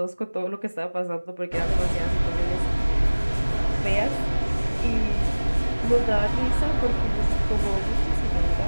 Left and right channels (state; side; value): inverted; both; correlation -1.00